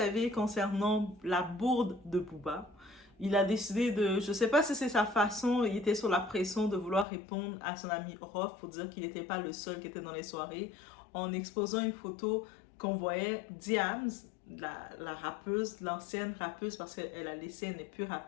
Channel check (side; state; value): right; drops out; at 7.1 s